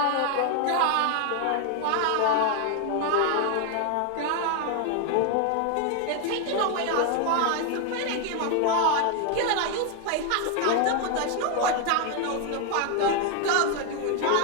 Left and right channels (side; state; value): both; different; correlation 0.01